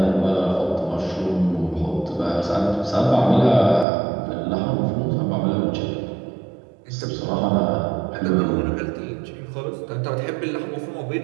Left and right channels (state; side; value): drops out; left; at 3.9 s